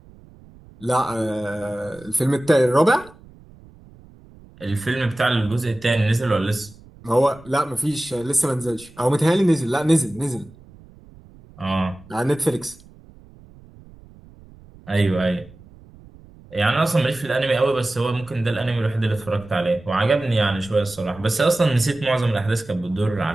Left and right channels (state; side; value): noise; right; rumble, 23 dB below the sound